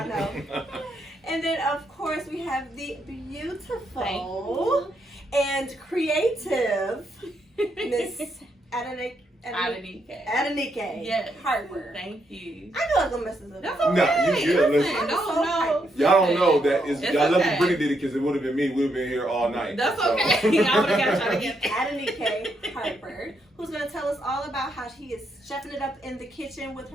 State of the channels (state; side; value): normal; both; correlation 0.78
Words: know. And then, of course, we have the beautiful and creative Miss Adenike Harper. Thank you. I know I'm gonna mess this up. That's okay. No, you good. Listen. No. Y'all don't know that is. It's Y'all love okay. Brittany did it because it would have been me. We'd have been here all night. That's So. okay. I would have got trying to get Adenike Harper, who's gonna tell us all about how she is chefing it up in the kitchen with